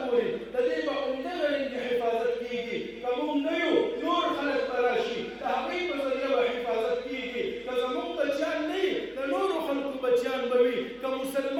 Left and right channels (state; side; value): identical; both; correlation 1.00